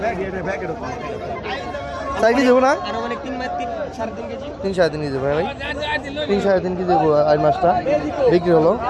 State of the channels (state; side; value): identical; both; correlation 1.00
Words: 4 কেজি দেবো না? 3-3.5 কেজি দেবো ভাই। 3-3.5 কেজি দেবো আর মাছটা বিক্রি হলো